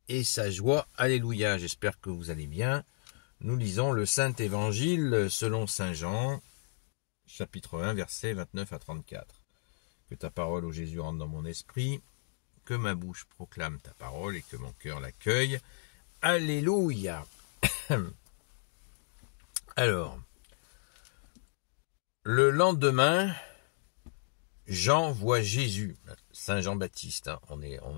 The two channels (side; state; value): right; silent; digital silence